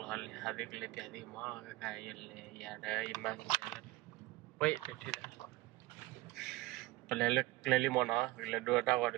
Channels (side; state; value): left; quieter; 19.2 dB